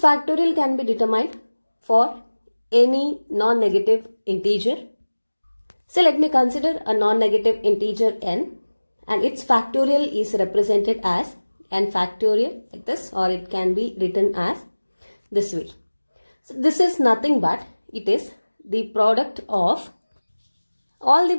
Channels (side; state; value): both; inverted; correlation -1.00